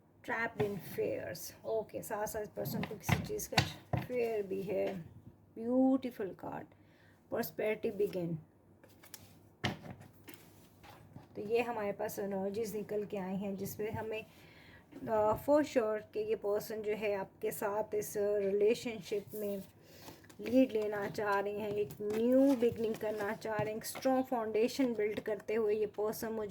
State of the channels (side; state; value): both; identical; correlation 1.00